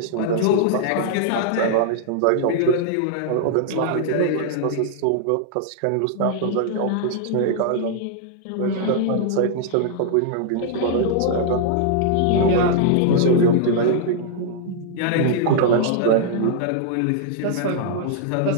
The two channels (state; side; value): different; both; correlation -0.01